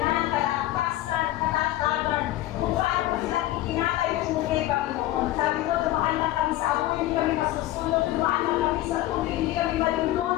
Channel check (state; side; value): quieter; right; 15.5 dB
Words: kalakasan, katatagan, kung paano po silang itinakay yung muli, Panginoon. Sabi ko, dumaan lang kami sa apoy, hindi kami masusunod, dumaan lang kami sa tubig, hindi kami